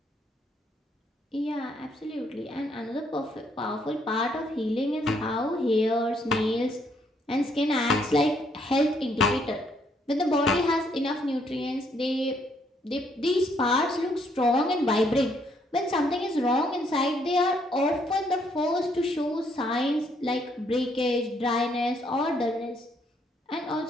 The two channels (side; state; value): both; normal; correlation 0.70